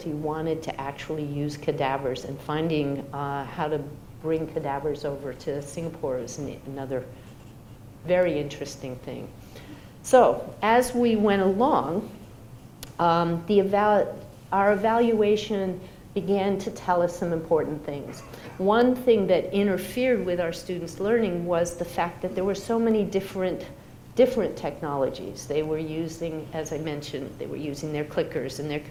wanted to actually use cadavers, and finding how to bring cadavers over to Singapore is another very interesting thing. So as we went along, our evaluation began to tell us some important things. One thing that interfered with our students' learning was the fact that there were so many different technologies. They were using, as I mentioned, they were using their clickers and their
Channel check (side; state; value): both; identical; correlation 1.00